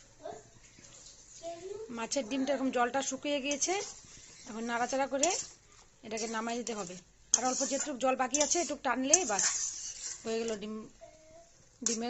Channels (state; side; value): identical; both; correlation 1.00